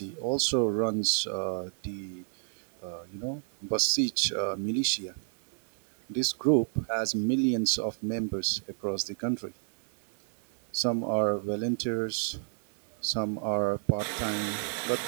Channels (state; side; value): silent; left; digital silence